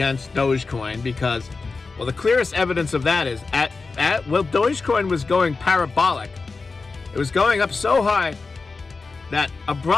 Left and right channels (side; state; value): right; quieter; 4.2 dB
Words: Dogecoin because, well, the clearest evidence of that is Dogecoin was going parabolic. It was going up so high that